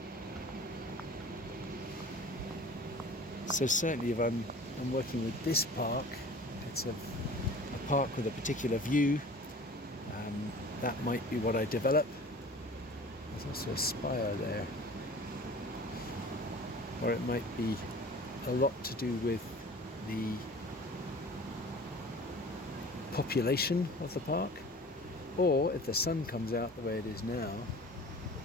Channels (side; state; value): both; normal; correlation 0.43